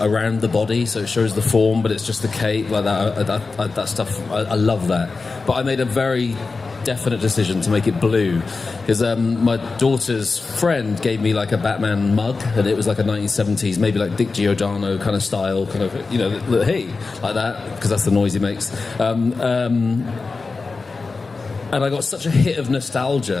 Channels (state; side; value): quieter; right; 4.1 dB